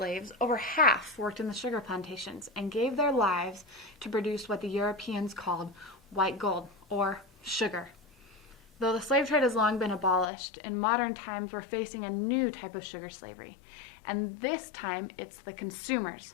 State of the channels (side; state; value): right; drops out; at 10.2 s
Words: over half worked in the sugar plantations and gave their lives to produce what the Europeans called white gold, or sugar. Though the slave trade has long been abolished, in modern times we're facing a new type of sugar slavery. And this time it's the consumers,